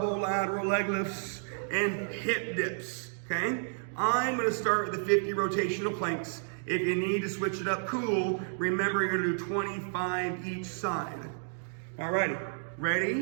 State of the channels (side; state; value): left; silent; digital silence